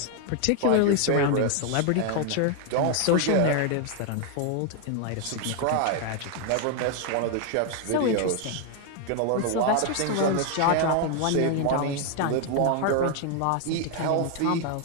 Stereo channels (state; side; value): different; both; correlation 0.01